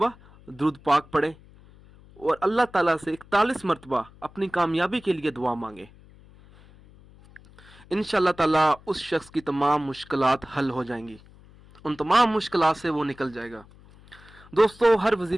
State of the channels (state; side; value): noise; left; hum, 24 dB below the sound